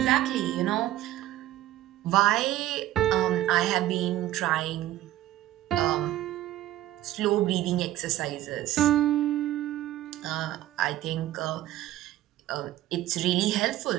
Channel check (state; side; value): quieter; left; 14.4 dB